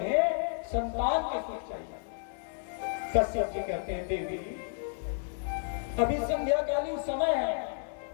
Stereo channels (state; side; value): silent; right; 57 dB below the other